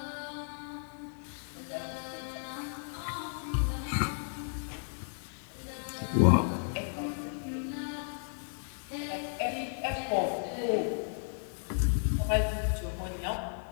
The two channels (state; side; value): silent; right; digital silence